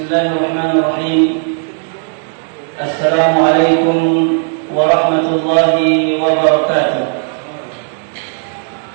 Assalamualaikum warahmatullahi wabarakatuh.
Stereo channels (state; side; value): silent; left; 60 dB below the other